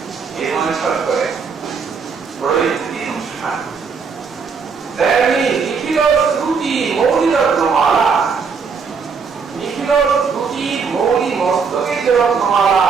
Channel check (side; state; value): left; quieter; 5.6 dB